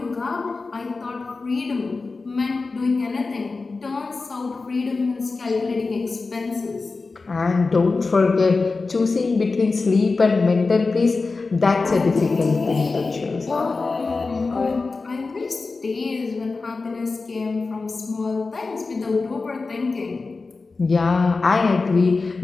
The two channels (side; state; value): right; quieter; 4.0 dB